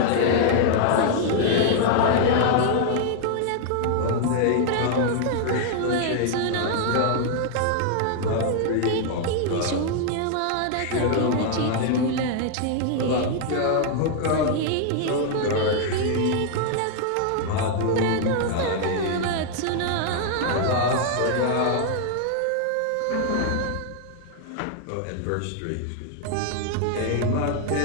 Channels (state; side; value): different; both; correlation 0.00